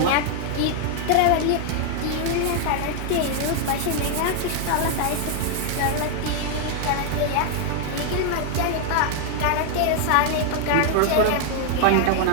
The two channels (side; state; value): both; different; correlation 0.00